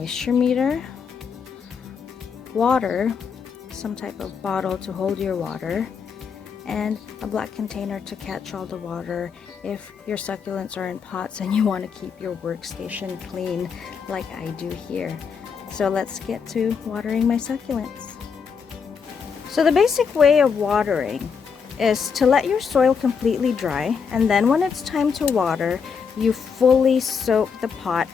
meter, water, some type of bottle to hold your water, and a black container to catch all the water if your succulents are in pots and you want to keep your workstation clean like I do here. So let's get to watering my succulents. So the basic way of watering is to let your soil completely dry, and then when it's time to water, you fully soak the pot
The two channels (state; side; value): quieter; right; 6.2 dB